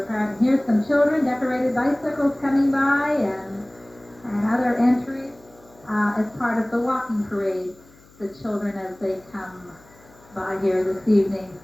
parked. Here's some children, decorated bicycles coming by, and other entries as part of the walking parade. The children, as they come by here this evening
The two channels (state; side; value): noise; left; hum, 27 dB below the sound